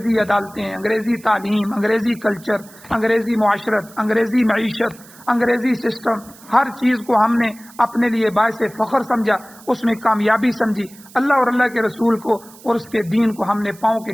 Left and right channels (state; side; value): noise; right; hiss, 22 dB below the sound